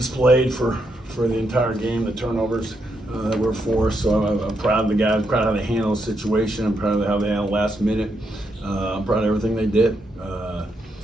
for the entire game, the turnovers that were forced. So I'm proud of the guys, proud of how they handled the situation. I'm proud of how they handled last minute. I'm proud of everything they did.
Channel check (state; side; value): normal; both; correlation 0.80